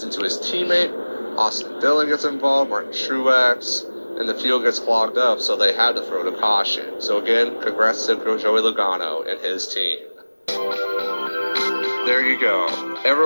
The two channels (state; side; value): inverted; both; correlation -1.00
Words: into his teammate. Austin Dillon gets involved. Martin Truex. And the field gets clogged up, so they had to throw the caution. So again, congrats to Joey Logano and his team. There you go.